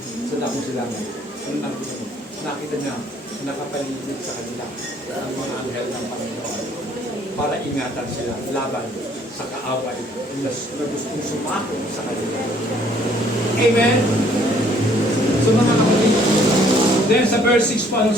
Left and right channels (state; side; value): normal; both; correlation 0.61